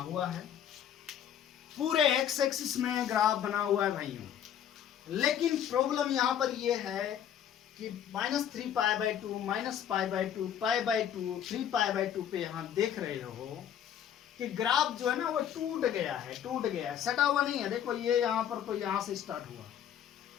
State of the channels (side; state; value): right; quieter; 9.6 dB